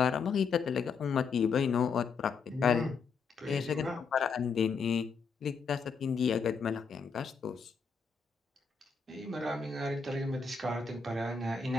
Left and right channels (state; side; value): quieter; right; 5.4 dB